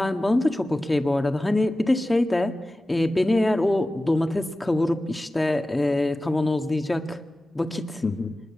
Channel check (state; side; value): normal; both; correlation 0.95